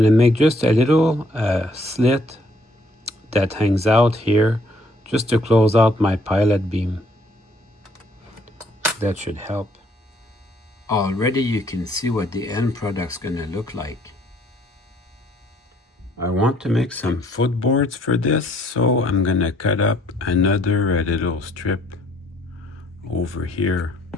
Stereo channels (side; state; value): both; normal; correlation 0.64